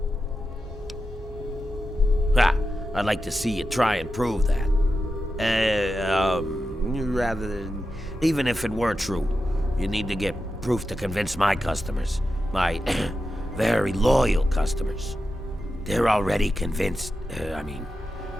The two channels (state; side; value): normal; both; correlation 0.90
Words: I'd like to see you try and prove that. Rather than... Even if it were true, you need to get proof to convince my customers. My very loyal customers. They're already convinced.